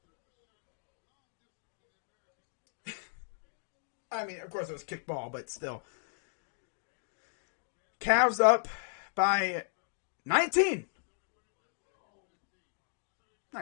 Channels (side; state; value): right; silent; digital silence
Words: I mean, of course it was kicked ball, but still. Cavs up by 19.